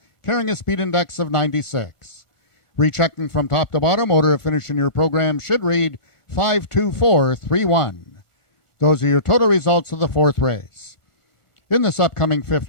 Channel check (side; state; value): right; late; 1.4 ms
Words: carrying a speed index of 96. Rechecking from top to bottom, order of finish in your program should read 5-2-4-3-1. Those are your total results of the 4th race. In this upcoming fifth